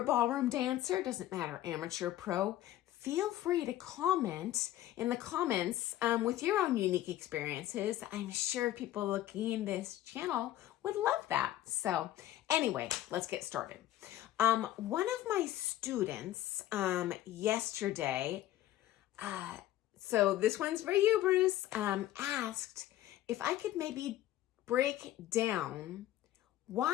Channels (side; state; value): right; quieter; 14.0 dB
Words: ballroom dancer, doesn't matter, amateur, pro, feel free to comment in the comments with your own unique experiences. I'm sure people looking this channel would love that. So anyway, let's get started. One of my students yesterday, so this one's for you, Bruce, asked if I could maybe break down